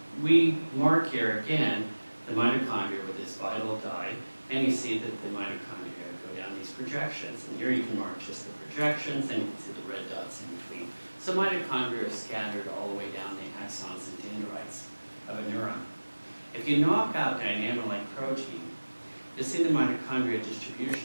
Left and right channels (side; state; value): both; inverted; correlation -1.00